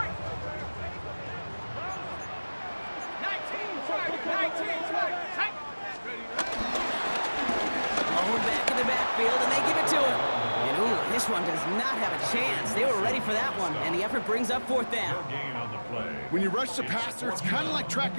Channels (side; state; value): both; inverted; correlation -1.00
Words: 19, Thrown back in the backfield, and they give it to him. And ooh, this one does not have a chance. They were ready for that one, and the effort brings up fourth down. When you rush the passer, it's kind of like